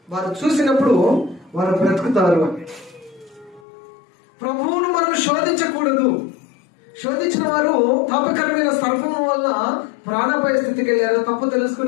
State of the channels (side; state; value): right; drops out; at 3.6 s